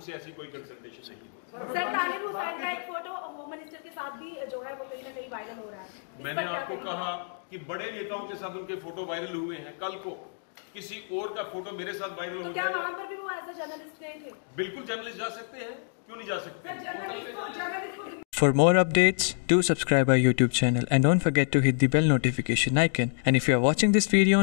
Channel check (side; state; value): right; silent; digital silence